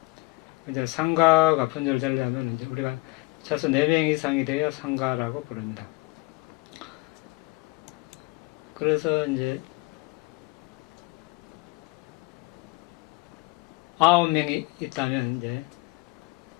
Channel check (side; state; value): right; quieter; 24.6 dB